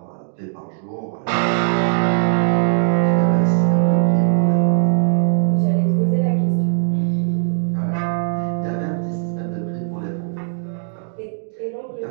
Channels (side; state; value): left; silent; digital silence